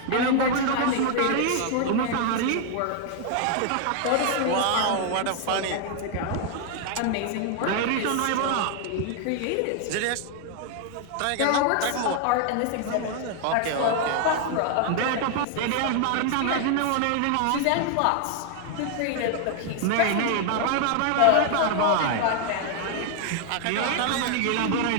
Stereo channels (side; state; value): both; different; correlation 0.00